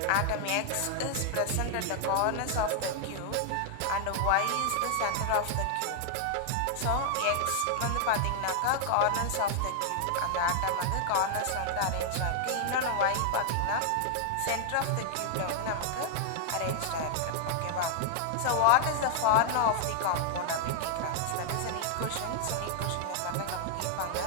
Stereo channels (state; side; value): different; both; correlation -0.01